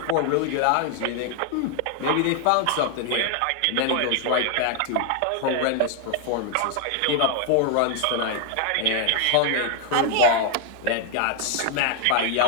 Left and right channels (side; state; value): both; different; correlation 0.00